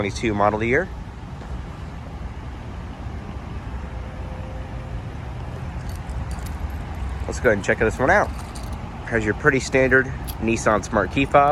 model year. Let's go ahead and check this one out. Has your pretty standard Nissan Smart Key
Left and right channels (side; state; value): both; identical; correlation 1.00